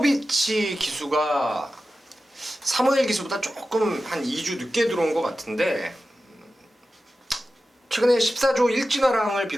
기수가 사무엘 기수보다 조금 한 2주 늦게 들어온 것 같은데 최근에 14조 일진화랑을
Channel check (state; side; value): normal; both; correlation 0.93